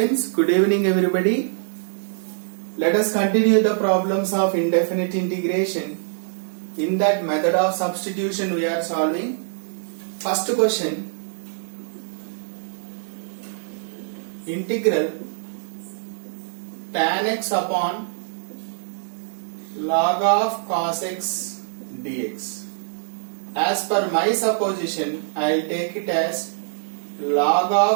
good evening everybody. Let us continue the problems of indefinite integration. In that method of substitution we are solving. First question, integral tan x upon log of cos x dx. As per my supposition, I will take it as log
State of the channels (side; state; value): left; silent; digital silence